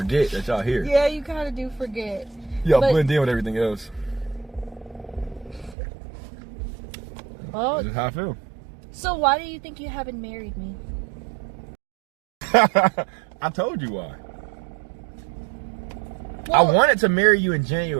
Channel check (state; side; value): drops out; left; at 5.8 s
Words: that y'all here. Yeah, you kind of do forget. Y'all blend in with everything else. Oh, that's just how I feel. So why do you think you haven't married me? I told you why. Well, I wanted to marry you in